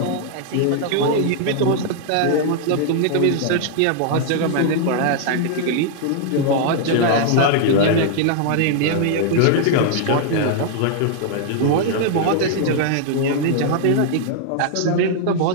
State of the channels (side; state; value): both; different; correlation 0.00